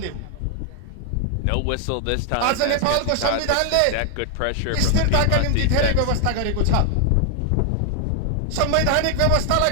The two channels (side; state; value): both; different; correlation 0.00